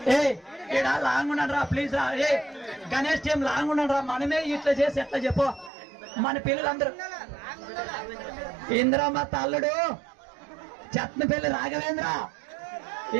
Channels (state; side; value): drops out; left; at 5.7 s